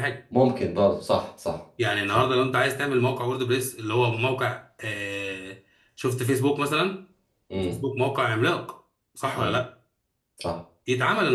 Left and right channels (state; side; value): identical; both; correlation 1.00